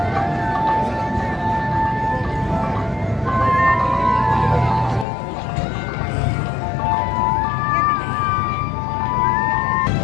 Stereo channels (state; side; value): drops out; right; at 5.1 s